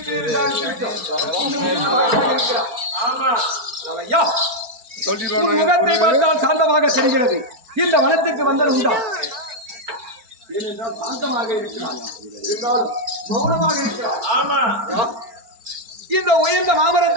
முகத்தை பார்த்தால் சாந்தமாக தெரிகிறது. இந்த வனத்துக்கு வந்தது உண்டா? ஏனென்றால் சாந்தமாக இருக்கிறார், இருந்தாலும் மௌனமாக இருக்கிறார். ஆமா, இந்த உயர்ந்த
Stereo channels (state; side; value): late; left; 4.5 ms